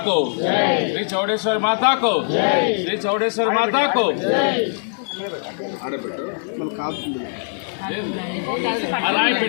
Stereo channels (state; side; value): silent; right; digital silence